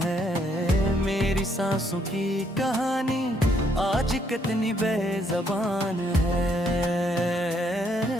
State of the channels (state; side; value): normal; both; correlation 0.71